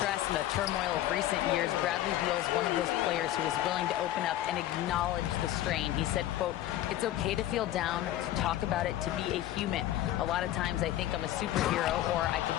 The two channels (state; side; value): quieter; right; 13.6 dB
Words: and the turmoil of recent years, Bradley Beal is one of those players who is willing to open up and acknowledge the strain. He said, quote, "It's okay to feel down, to talk about it, to be a human. A lot of times I think I'm a superhero or I